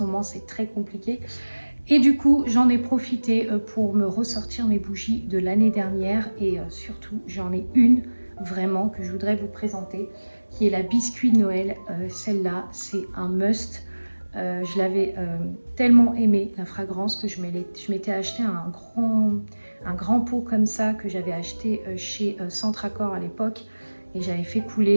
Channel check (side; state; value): both; inverted; correlation -1.00